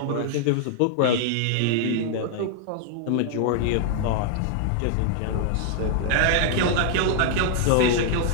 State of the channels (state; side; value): different; both; correlation -0.01